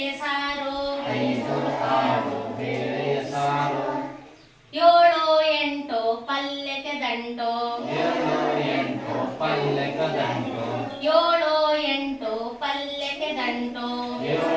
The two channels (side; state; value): both; identical; correlation 1.00